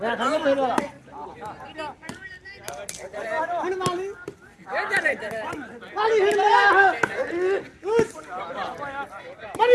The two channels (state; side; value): identical; both; correlation 1.00